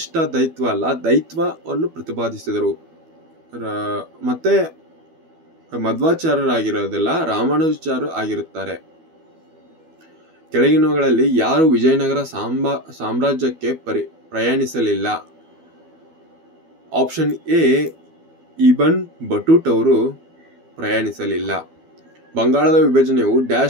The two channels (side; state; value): left; late; 12 ms